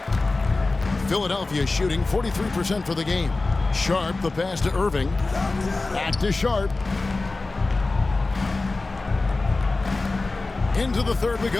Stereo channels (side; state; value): right; quieter; 3.4 dB